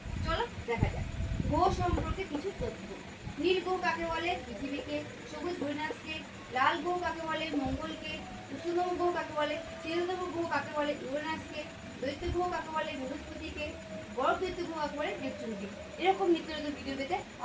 চলো দেখা যাক গ্রহ সম্পর্কে কিছু তথ্য। নীল গ্রহ কাকে বলে? পৃথিবীকে। সবুজ ইউরেনাসকে। লাল গ্রহ কাকে বলে? মঙ্গলকে। উষ্ণতম গ্রহ কাকে বলে? শীতলতম গ্রহ কাকে বলে? ইউরেনাসকে। দৈত্য গ্রহ কাকে বলে? বৃহস্পতিকে। বড় দৈত্য গ্রহ কাকে বলে? নেপচুনকে। এরকম নিত্য নতুন ভিডিও পেতে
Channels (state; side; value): identical; both; correlation 1.00